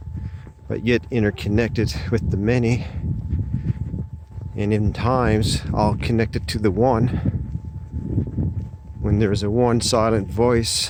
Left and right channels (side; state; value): both; identical; correlation 1.00